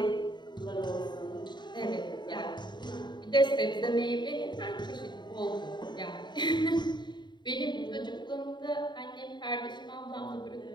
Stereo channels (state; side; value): late; right; 0.22 ms